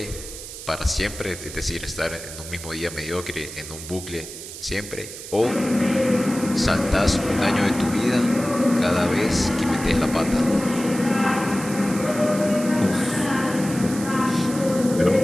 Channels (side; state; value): right; noise; hiss, 12 dB below the sound